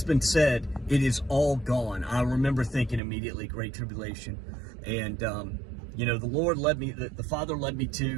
said it is all gone, I remember thinking immediately Great Tribulation. And the Lord led me, the Father led me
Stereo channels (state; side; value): drops out; left; at 3.0 s